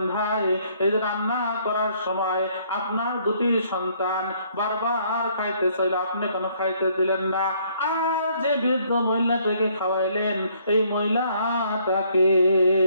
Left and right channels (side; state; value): both; inverted; correlation -0.65